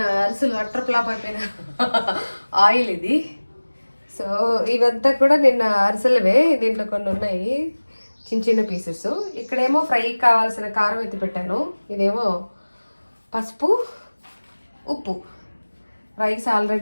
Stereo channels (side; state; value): both; inverted; correlation -1.00